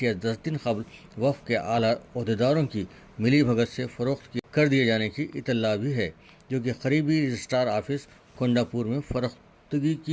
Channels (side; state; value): both; identical; correlation 1.00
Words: یا 10 دن قبل وقف کے اعلیٰ عہدیداروں کی ملی بھگت سے فروخت کر دیے جانے کی اطلاع بھی ہے، جو کہ قریبی رجسٹرار آفس کونڈاپور میں فروختگی